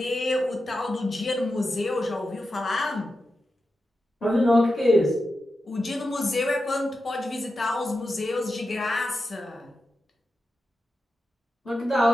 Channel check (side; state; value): both; normal; correlation 0.90